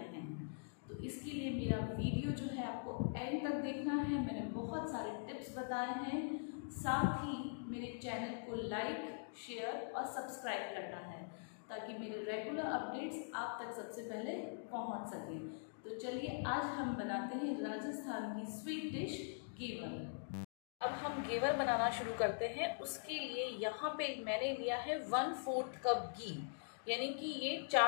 हैं। तो इसके लिए मेरा वीडियो जो है आपको एंड तक देखना है। मैंने बहुत सारे टिप्स बताए हैं, साथ ही मेरे चैनल को लाइक, शेयर और सब्सक्राइब करना है ताकि मेरे रेगुलर अपडेट्स आप तक सबसे पहले पहुंच सके। तो चलिए आज हम बनाते हैं राजस्थान की स्वीट डिश घेवर। अब हम घेवर बनाना शुरू करते हैं। उसके लिए यहाँ पे मैंने लिया है 1/4 कप घी, यानी कि ये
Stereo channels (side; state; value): right; silent; digital silence